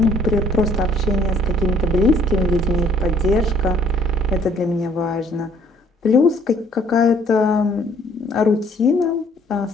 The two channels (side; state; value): both; normal; correlation 0.61